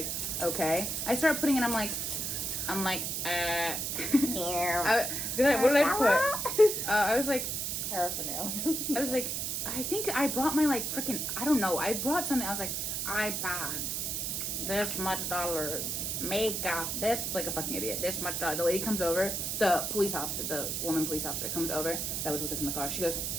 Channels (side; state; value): right; noise; hiss, 1 dB below the sound